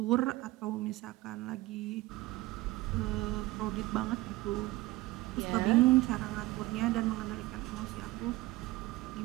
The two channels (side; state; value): left; quieter; 18.7 dB